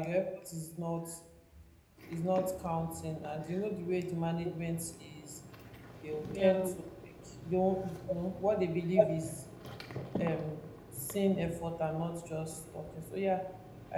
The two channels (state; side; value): identical; both; correlation 1.00